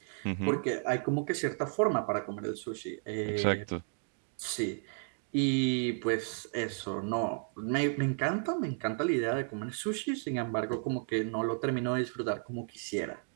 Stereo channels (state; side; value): silent; left; 56 dB below the other